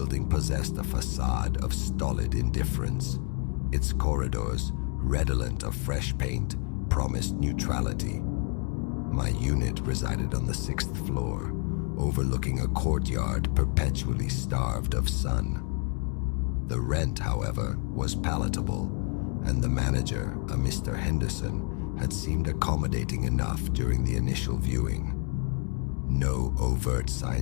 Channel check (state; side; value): quieter; right; 39.8 dB